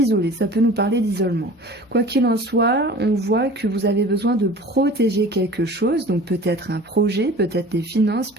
ça peut nous parler d'isolement. Quoi qu'il en soit, on voit que vous avez besoin de protéger quelque chose, donc peut-être un projet, peut-être des finances,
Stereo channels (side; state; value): both; normal; correlation 0.42